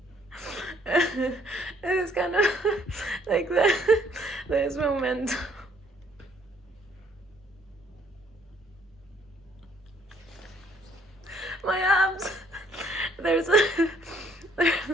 It's kind of like that. There's momentum. My abs. There's like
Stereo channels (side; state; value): both; normal; correlation 0.64